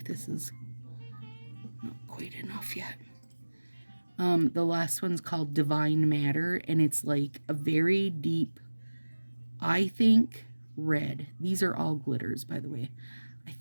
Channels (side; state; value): both; inverted; correlation -1.00